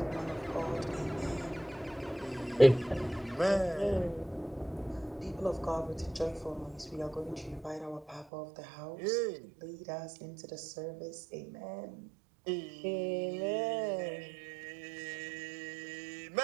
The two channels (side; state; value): left; drops out; at 8.2 s